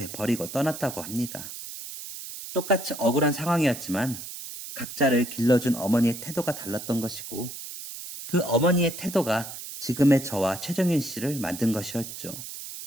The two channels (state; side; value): noise; right; hiss, 10 dB below the sound